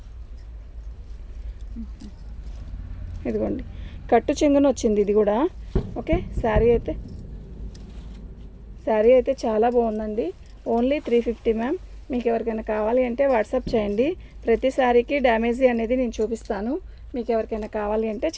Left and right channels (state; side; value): identical; both; correlation 1.00